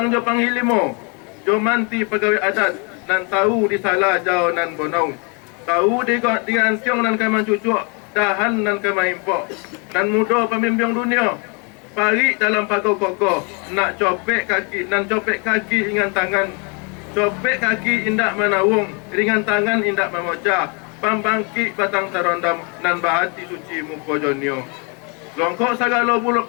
jo panghilimo, jo manti pegawai adat, nan tahu disalah jauh nan bonau. Tahu di antiong nan kaman cucuk, dahan nan kaman impok. Nan muda pemimpin dunia, pari dalam pagar kokoh, nak copek kaki, nan copek kaki ringan tangan. Copek kaki indak menawung, ringan tangan indak memocah. Pambangkit batang terondam, nan bahati suci muko jonio. Longkok sagala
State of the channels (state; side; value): quieter; right; 34.2 dB